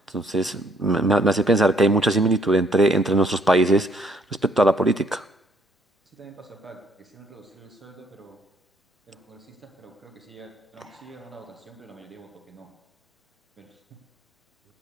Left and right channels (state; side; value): normal; both; correlation 0.65